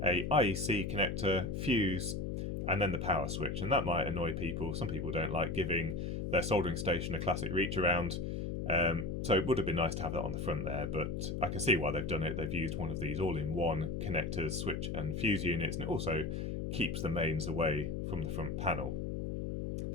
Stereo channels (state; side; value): noise; left; hum, 2 dB below the sound